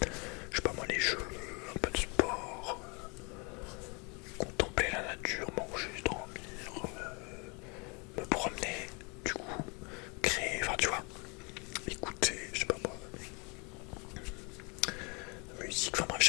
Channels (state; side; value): quieter; right; 31.1 dB